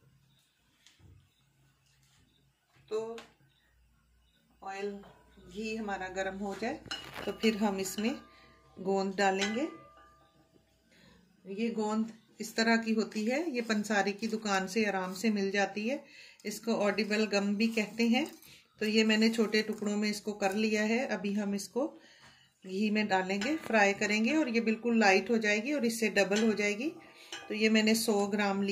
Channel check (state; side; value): identical; both; correlation 1.00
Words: तो ऑयल, घी हमारा गर्म हो जाए तो फिर हम इसमें गोंद डालेंगे। ये गोंद इस तरह की होती है, ये पंसारी की दुकान से आराम से मिल जाती है। इसको ऑडिबल गम भी कहते हैं। तो ये मैंने छोटे टुकड़ों में इसको कर लिया है। अभी हम इसको घी में डालेंगे, फ्राई करेंगे और ये बिल्कुल लाइट हो जाएगी और इससे डबल हो जाएगी। तो ये मैंने 100 ग्राम